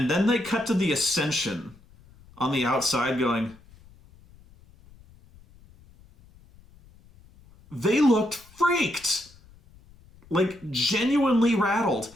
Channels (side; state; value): left; noise; rumble, 26 dB below the sound